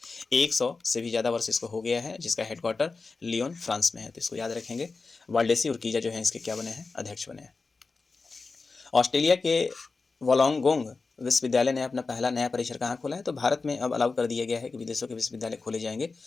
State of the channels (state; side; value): quieter; right; 4.1 dB